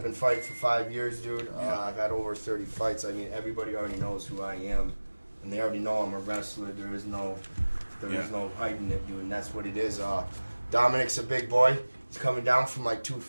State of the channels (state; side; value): inverted; both; correlation -1.00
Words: been fighting for 5 years, dude. I've had over 30 fights. I mean, everybody already knows who I am, and they already know I'm a wrestler. There is no hiding it, dude, and that's what it is. Dominic's a big boy. He's coming down from like